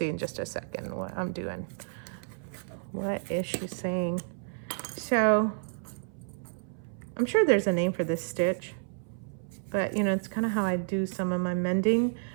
in just a second what I'm doing. What is she saying? So I'm sure there's a name for this stitch, but you know, it's kind of how I do some of my mending.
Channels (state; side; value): silent; left; 57 dB below the other